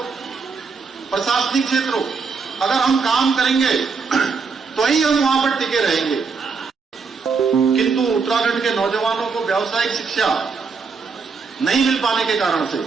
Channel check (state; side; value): quieter; left; 5.0 dB